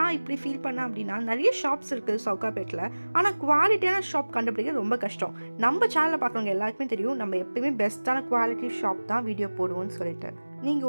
இப்படி ஃபீல் பண்ணேன் அப்படின்னா, நிறைய ஷாப்ஸ் இருக்குது சவுகார்பேட்டில், ஆனால் குவாலிட்டியான ஷாப் கண்டுபிடிக்கிறது ரொம்ப கஷ்டம். நம்ம சேனலில் பார்க்குறவங்க எல்லாருக்குமே தெரியும், நம்ம எப்பயுமே பெஸ்ட்டான குவாலிட்டி ஷாப் தான் வீடியோ போடுவோம்னு சொல்லிட்டு. நீங்க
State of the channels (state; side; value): inverted; both; correlation -1.00